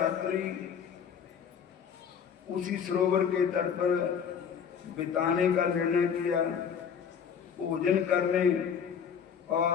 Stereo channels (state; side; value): quieter; right; 7.3 dB